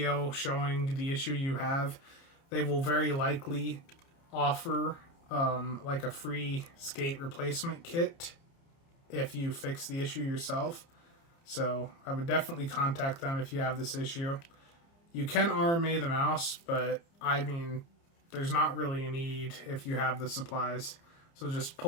showing the issue you have, they will very likely offer like a free skate replacement kit if you fix the issue yourself. So I would definitely contact them if you have this issue. You can RMA the mouse, but I mean, there's not really a need if you have the supplies. So just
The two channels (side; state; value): right; late; 30 ms